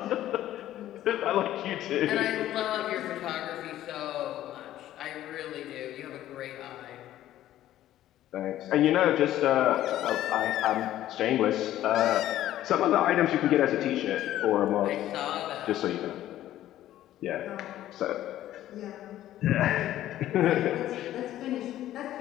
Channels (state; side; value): quieter; right; 13.2 dB